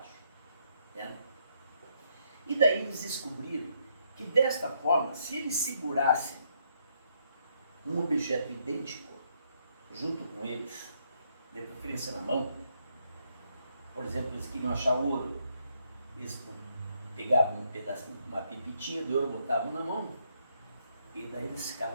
Né? E daí eles descobriram que desta forma, se eles segurassem um objeto idêntico junto com eles, de preferência na mão, por exemplo, eles queriam achar ouro, eles pegavam um pedacinho, uma pipitinha de ouro, botavam na mão, e daí eles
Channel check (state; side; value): inverted; both; correlation -0.74